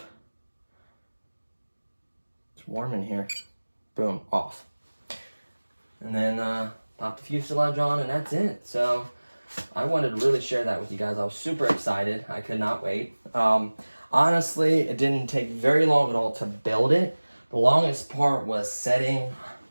It's warm in here. Boom, off. And then pop the fuselage on, and that's it. So I wanted to really share that with you guys. I was super excited. I could not wait. Honestly, it didn't take very long at all to build it. The longest part was setting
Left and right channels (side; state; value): both; inverted; correlation -1.00